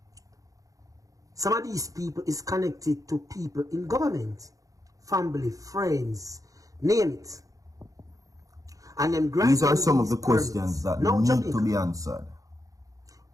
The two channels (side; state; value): left; late; 0.17 ms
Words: Some of these people is connected to people in government. Family, friends, name it. And them these are some of the questions that need Jamaica to be answered.